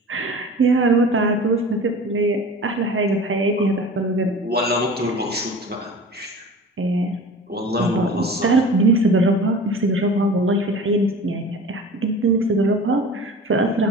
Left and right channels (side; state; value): both; normal; correlation 0.39